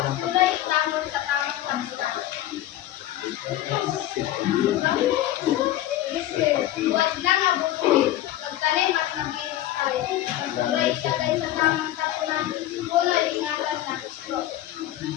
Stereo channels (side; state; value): right; quieter; 13.8 dB